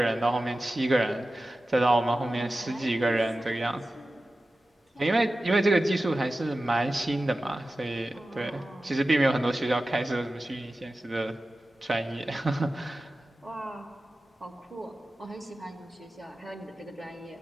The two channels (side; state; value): both; normal; correlation 0.95